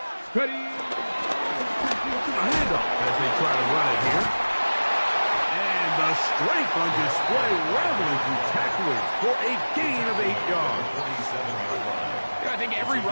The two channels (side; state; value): both; inverted; correlation -1.00